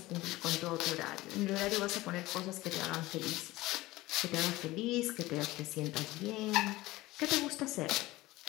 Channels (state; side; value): quieter; right; 18.7 dB